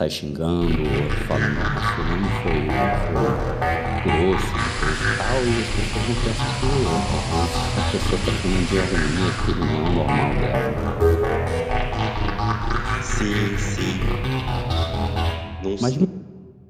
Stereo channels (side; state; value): both; identical; correlation 1.00